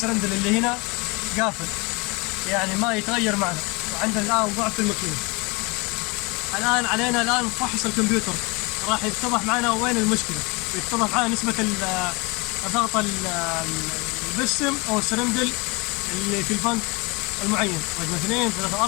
اللي هنا قافل، يعني ما يتغير معنا. وعندنا الآن ضعف في الماكينة. الآن علينا الآن فحص الكمبيوتر، راح يتضح معنا وين المشكلة، ويتضح معنا نسبة ضغط البستم أو السرندل اللي في البنك المعين، رقم 2 3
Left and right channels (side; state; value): right; quieter; 27.6 dB